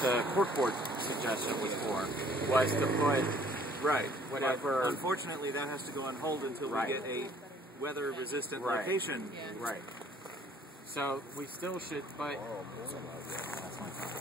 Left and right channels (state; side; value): normal; both; correlation 0.58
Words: court board suggestion was for, was to put whatever. But unfortunately, that has to go on hold until we get a weather-resistant location. Right. So we still should, but